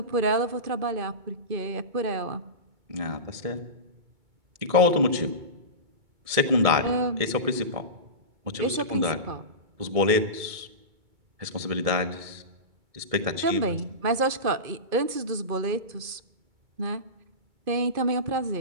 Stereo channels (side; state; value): left; late; 2.2 ms